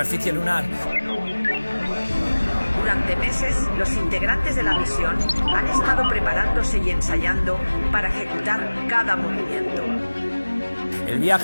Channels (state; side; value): inverted; both; correlation -1.00